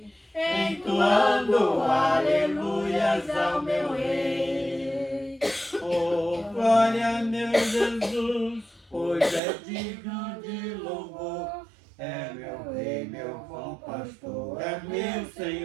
entoando aleluias ao meu Rei. Oh, glória, meu Jesus, pois é digno de louvor. É meu Rei, meu bom pastor, é meu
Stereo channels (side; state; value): left; drops out; at 9.4 s